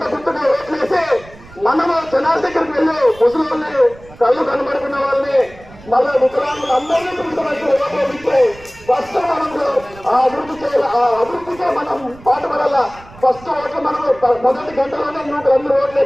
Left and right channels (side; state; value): right; noise; rumble, 21 dB below the sound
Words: గుర్తుగా ఓట్లేసి మనము జనాల దగ్గరికి వెళ్ళి ముసలి కళ్ళు కనబడుకున్న వాళ్ళని మళ్ళీ వికలాంగులు అందరినీ పిలుచుకోవచ్చు. ఓట్లు ఫస్ట్ మనము ఆ అభివృద్ధి చేయాలి. ఆ అభివృద్ధికే మనం పాటుపడాల. ఫస్ట్ ఓట్లు మనము మొదటి గంటలోనే యువకులందరూ ఓట్లు